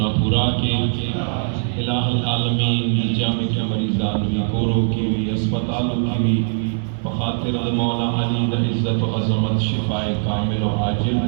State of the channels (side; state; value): left; silent; digital silence